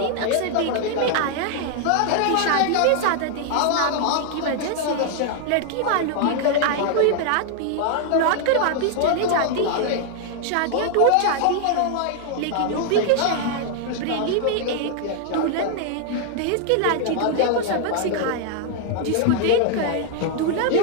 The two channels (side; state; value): both; different; correlation 0.00